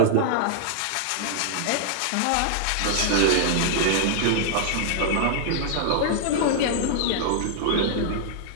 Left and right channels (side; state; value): both; different; correlation -0.01